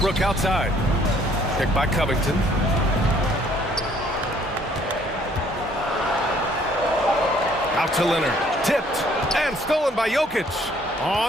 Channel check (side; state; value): both; normal; correlation 0.61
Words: outside. Picked by Covington. Out to Leonard. Tipped and stolen by Jokic.